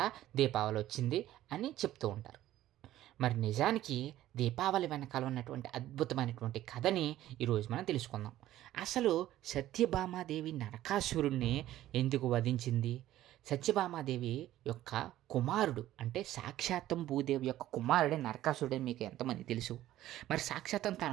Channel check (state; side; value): quieter; left; 14.0 dB